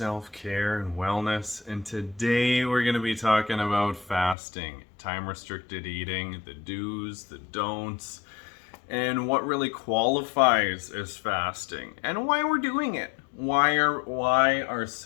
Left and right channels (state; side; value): drops out; right; at 4.4 s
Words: and wellness. And today we're going to be talking about fasting, time-restricted eating, the do's, the don'ts, and what really qualifies as fasting and why we're doing it. Why are